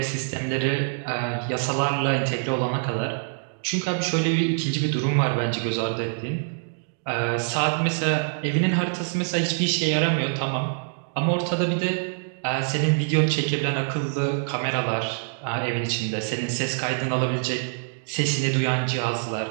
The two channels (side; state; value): left; silent; digital silence